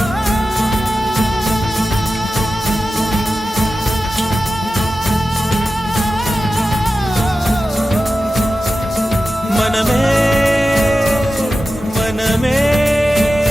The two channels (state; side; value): normal; both; correlation 0.93